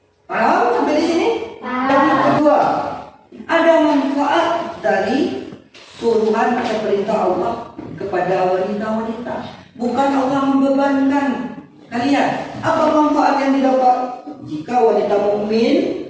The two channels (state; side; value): identical; both; correlation 1.00